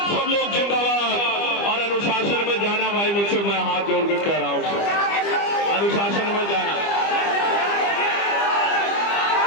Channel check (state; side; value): late; right; 25 ms